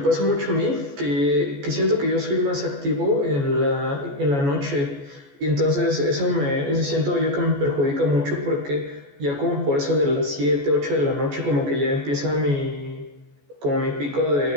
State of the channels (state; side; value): late; left; 14 ms